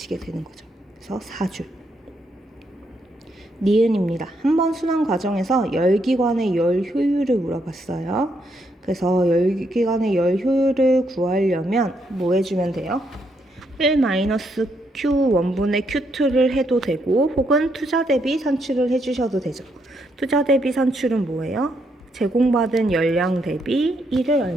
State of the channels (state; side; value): normal; both; correlation 0.76